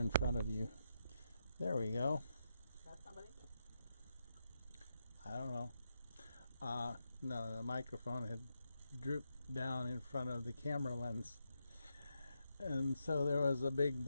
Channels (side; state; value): both; inverted; correlation -0.84